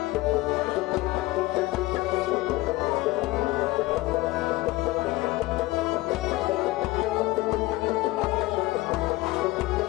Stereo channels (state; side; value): quieter; right; 19.6 dB